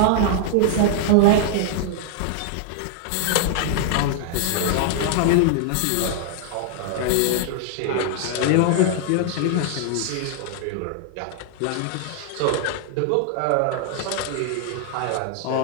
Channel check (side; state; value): both; different; correlation -0.01